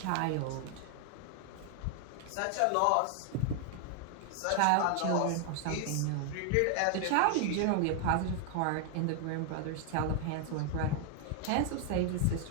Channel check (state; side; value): different; both; correlation 0.00